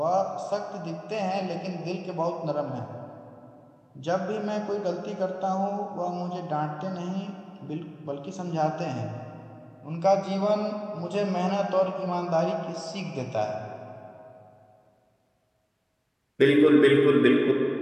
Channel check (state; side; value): identical; both; correlation 1.00